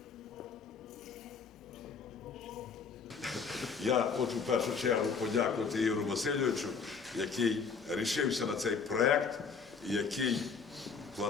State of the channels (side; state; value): right; quieter; 5.5 dB